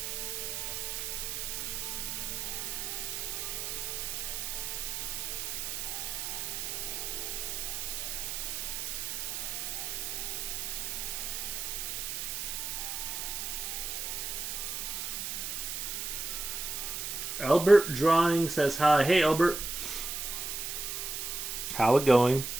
Albert Drawing says hi. Hey, Albert. How it going?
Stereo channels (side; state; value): right; noise; hiss, 3 dB below the sound